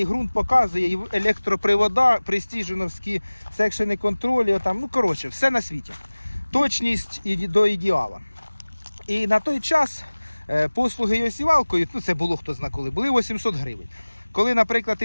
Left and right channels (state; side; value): inverted; both; correlation -1.00